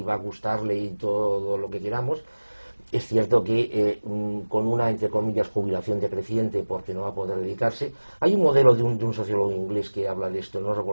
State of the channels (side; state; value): both; inverted; correlation -1.00